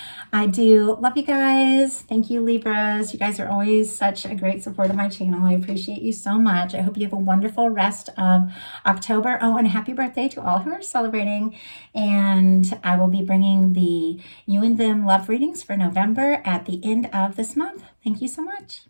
I do love you guys. Thank you, Libras. You guys are always such a great support of my channel. I appreciate you so much. I hope you have a wonderful rest of October. Oh, and happy birthday to all who are celebrating. And I will be bringing the You and Them love readings for November at the end of this month. Thank you so much.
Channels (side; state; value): both; inverted; correlation -1.00